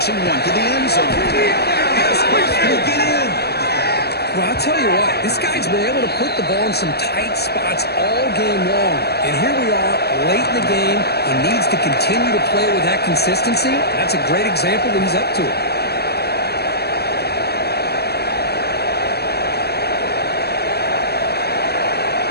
one to the end zone. Can he get in? Well, I'll tell you what, this guy's been able to put the ball in some tight spots all game long. And here we are, late in the game. He needs to continue to play with that consistency. That's a great example that he's up to it.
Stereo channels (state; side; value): late; right; 0.47 ms